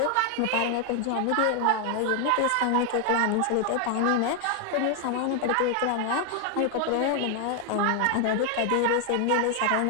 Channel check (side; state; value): both; different; correlation 0.00